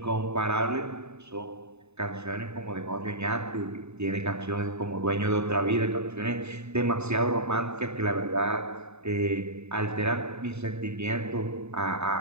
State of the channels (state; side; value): late; left; 0.81 ms